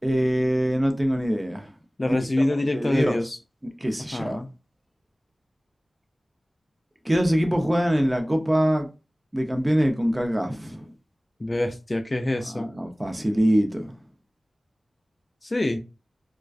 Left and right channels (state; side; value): normal; both; correlation 0.98